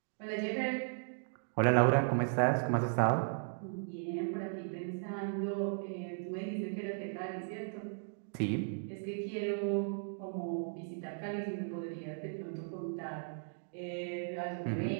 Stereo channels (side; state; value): left; silent; digital silence